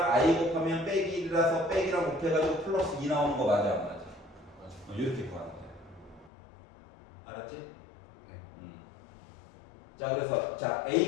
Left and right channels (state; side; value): drops out; right; at 6.3 s